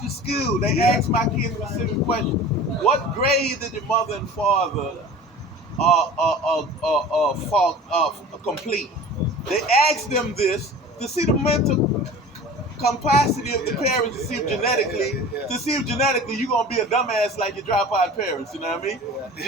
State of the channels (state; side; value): normal; both; correlation 0.40